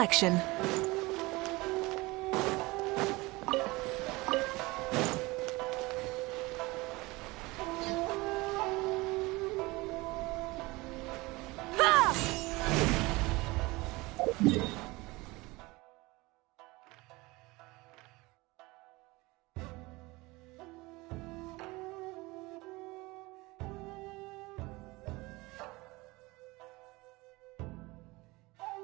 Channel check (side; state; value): left; quieter; 22.4 dB